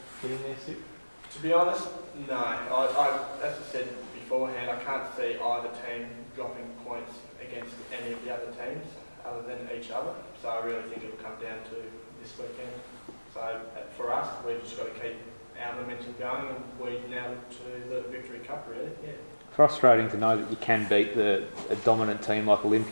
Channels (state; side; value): inverted; both; correlation -1.00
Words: getting there, Stu? To be honest, no. As I said beforehand, I can't see either team dropping points against any of the other teams other than each other. So I really think it'll come down to this weekend. So for us, we've just got to keep our momentum going and we now look to the Victory Cup, really. Yeah. Frustrating to know that you can beat a dominant team like